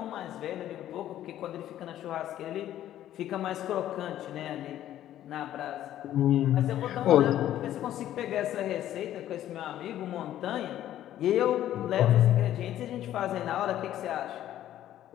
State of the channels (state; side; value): quieter; right; 12.3 dB